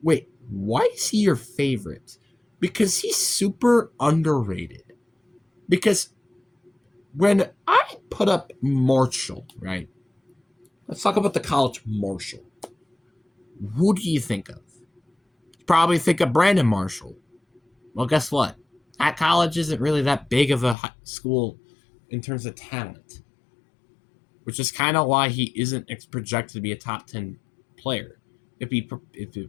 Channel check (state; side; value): drops out; right; at 20.8 s